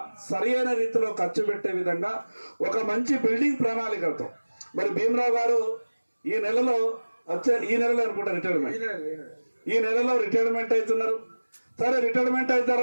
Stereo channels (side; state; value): both; inverted; correlation -1.00